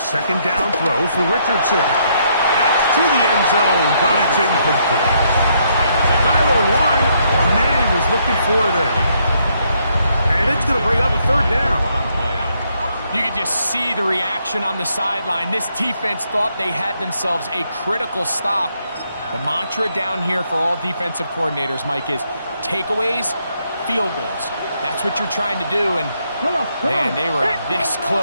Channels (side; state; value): both; inverted; correlation -0.73